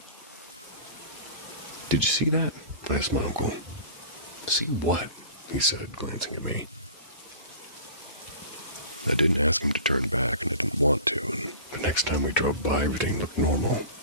"Did you see that?" asked my uncle. "See what?" he said, glancing at me. I didn't ask him to turn back, and I didn't want to, and the next time we drove by, everything looked normal.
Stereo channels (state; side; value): inverted; both; correlation -0.39